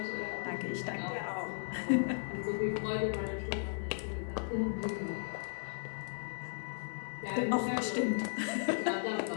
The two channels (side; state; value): right; silent; digital silence